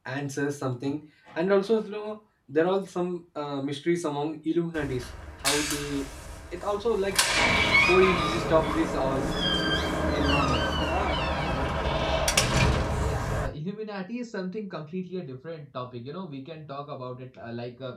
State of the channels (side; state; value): both; identical; correlation 1.00